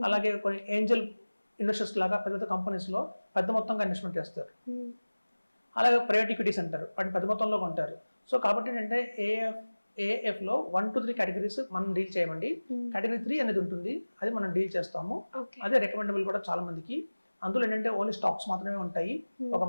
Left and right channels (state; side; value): inverted; both; correlation -1.00